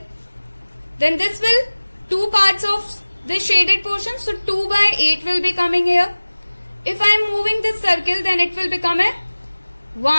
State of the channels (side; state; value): both; inverted; correlation -1.00